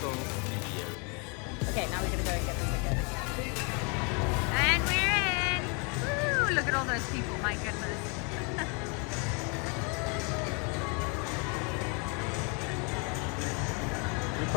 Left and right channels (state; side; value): quieter; right; 34.4 dB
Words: Studios. Okay, now we're gonna go and get the tickets. And we're in! Woo, look at all those people, my goodness. We